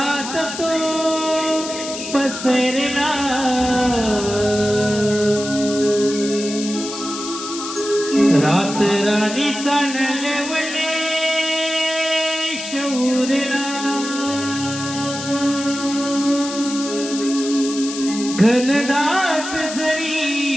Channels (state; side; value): noise; left; hiss, 8 dB below the sound